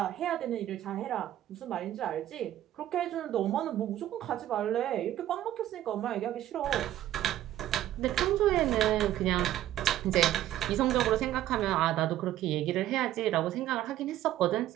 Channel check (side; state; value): left; quieter; 12.9 dB